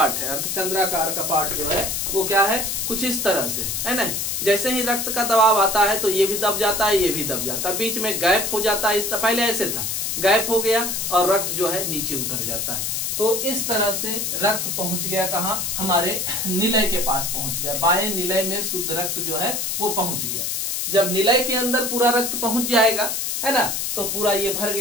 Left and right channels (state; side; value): noise; left; hiss, 1 dB below the sound